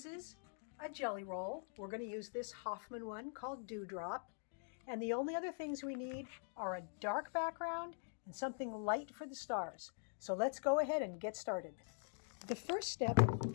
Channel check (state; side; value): silent; right; digital silence